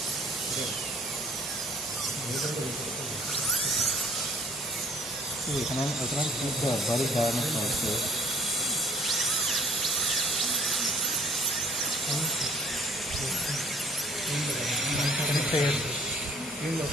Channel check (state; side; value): normal; both; correlation 0.55